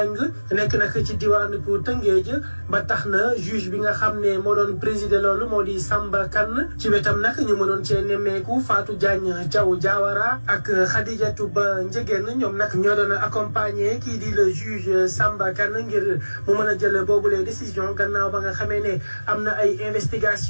nekk nag ci diwaanu bu Tëngéej ba tax na juge bi nga xam ne moo doon présider loolu moo di Samba Kane ci wetam nag ñu mënoon cee nemmeeku Fatou Diagne Diaw Diawara ak Khadijatou Ba Ndiégène ñoom nag ñoo doon accompagner kii di le juge Samba Kane ngir mu mën a jël boobu les décisions gannaaw ba nga xamee ne am na ay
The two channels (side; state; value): both; inverted; correlation -1.00